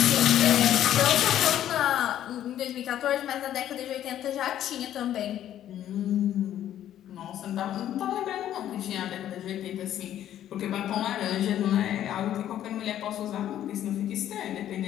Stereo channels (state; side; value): quieter; right; 11.5 dB